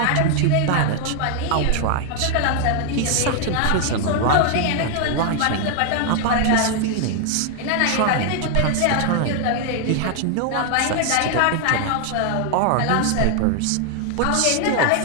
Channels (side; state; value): both; different; correlation 0.00